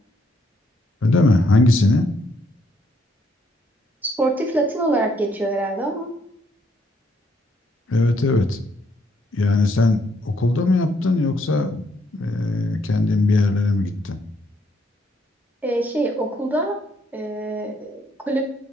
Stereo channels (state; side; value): normal; both; correlation 0.72